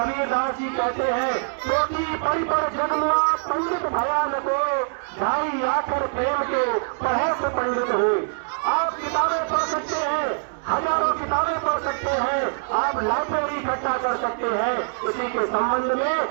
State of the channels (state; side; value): silent; left; digital silence